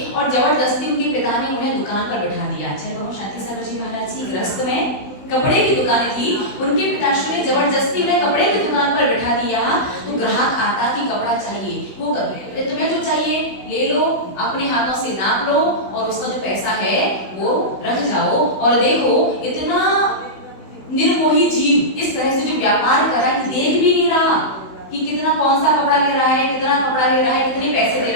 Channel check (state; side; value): late; right; 16 ms